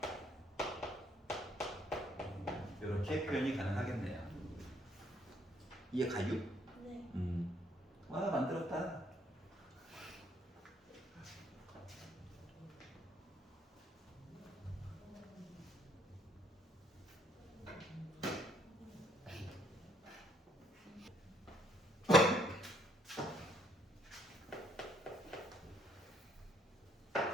이렇게 표현이 가능하겠네요. 이해 가요? 네. 와, 만들었다.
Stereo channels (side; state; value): both; normal; correlation 0.66